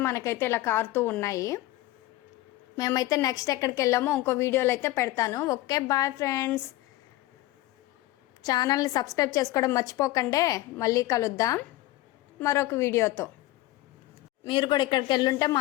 మనకైతే ఇలా కారుతూ ఉన్నాయి. మేమైతే నెక్స్ట్ ఎక్కడికి వెళ్ళామో ఇంకో వీడియోలో అయితే పెడతాను. Okay, bye friends. ఛానల్ని సబ్స్క్రైబ్ చేసుకోవడం మర్చిపోకండి. మళ్ళీ కలుద్దాం మరొక వీడియోతో. మీరు కూడా ఇక్కడికి వెళ్ళుంటే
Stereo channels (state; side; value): quieter; right; 17.0 dB